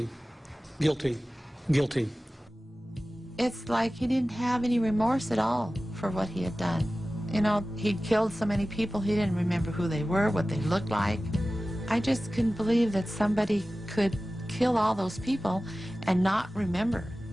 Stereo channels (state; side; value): normal; both; correlation 0.96